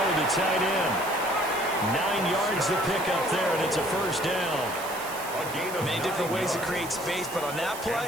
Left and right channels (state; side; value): noise; right; hiss, 12 dB below the sound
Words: the tight end. 9 yards to pick up there, and it's a first down. Many different ways to create space, but on that play,